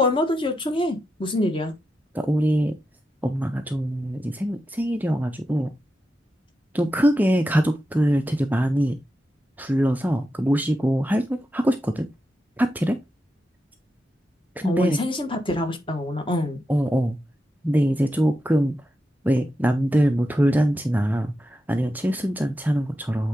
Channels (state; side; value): normal; both; correlation 0.88